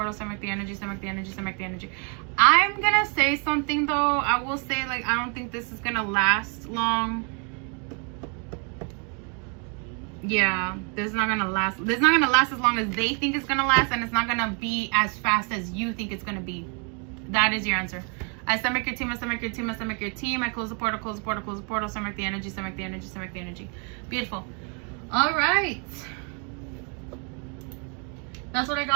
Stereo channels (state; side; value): quieter; left; 36.7 dB